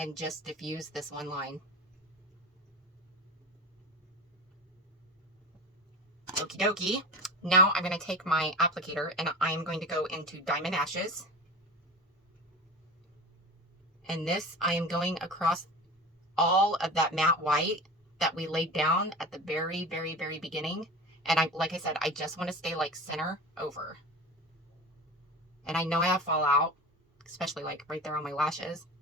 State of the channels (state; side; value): normal; both; correlation 0.31